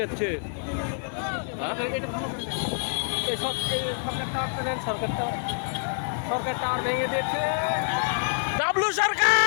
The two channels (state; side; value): silent; right; 58 dB below the other